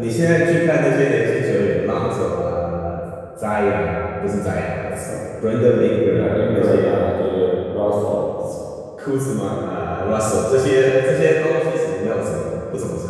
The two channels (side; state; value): both; identical; correlation 1.00